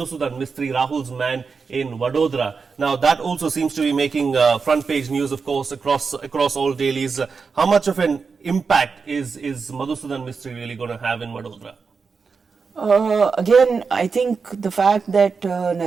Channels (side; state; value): left; quieter; 5.1 dB